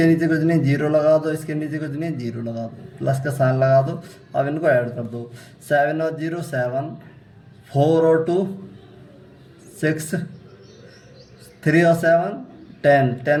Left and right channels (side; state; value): both; identical; correlation 1.00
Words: नीचे कुछ नहीं, 0 लगा दो। इसके नीचे कुछ नहीं, 0 लगा दो, प्लस का साइन लगा दो। अब इनको ऐड कर दो। 7 और 0 7, 4 और 2 6, 3 और 7 10,